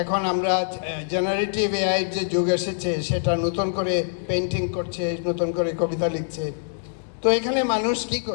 এখন আমরা জেনারেটিভ এআইয়ের যে যুগ এসেছে, সেটা নতুন করে পেন্টিং করছে, নতুন করে কবিতা লিখছে। তো এখানে মানুষ কি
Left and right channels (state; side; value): silent; right; digital silence